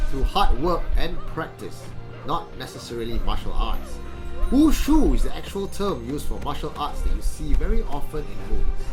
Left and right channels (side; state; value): both; identical; correlation 1.00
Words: through hard work and practice, not necessarily martial arts. Wushu is the actual term used for martial arts that you see very often in movies.